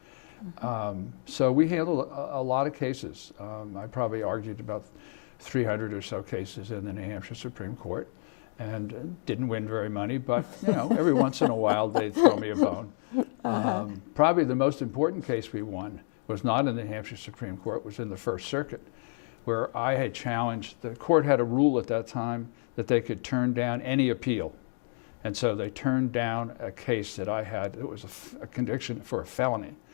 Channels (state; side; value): silent; right; digital silence